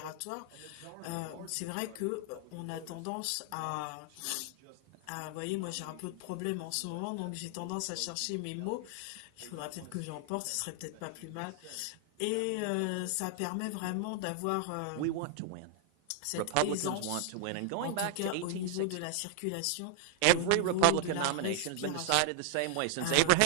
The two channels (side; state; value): both; different; correlation -0.01